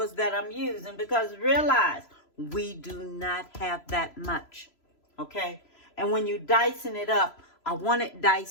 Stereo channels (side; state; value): right; late; 3.0 ms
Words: that I'm using, because realize we do not have that much, okay? And when you're dicing it up, I want it